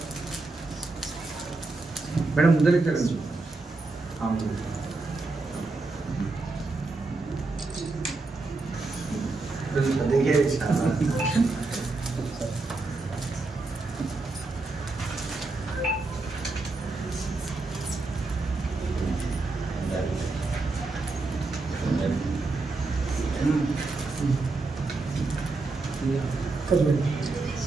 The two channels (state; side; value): quieter; left; 3.5 dB